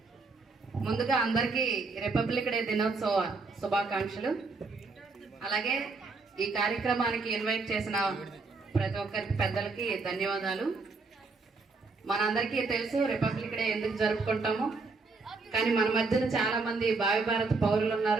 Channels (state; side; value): quieter; left; 4.0 dB